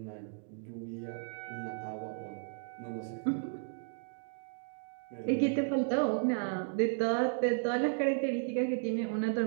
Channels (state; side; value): silent; left; digital silence